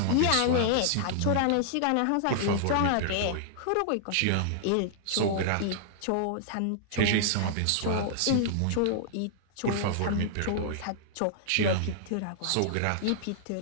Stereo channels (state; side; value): different; both; correlation -0.01